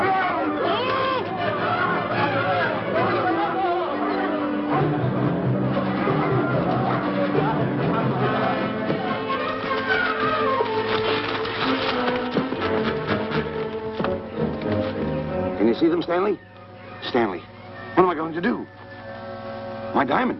Can you see them, Stanley? Stanley, what am I going to do? My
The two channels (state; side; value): identical; both; correlation 1.00